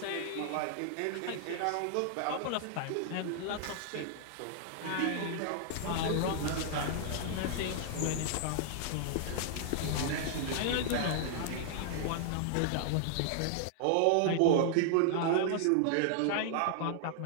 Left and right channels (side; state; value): both; different; correlation -0.01